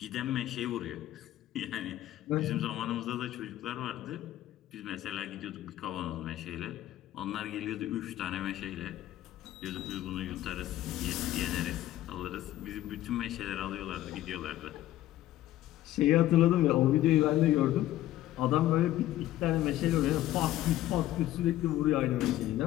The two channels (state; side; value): quieter; right; 14.1 dB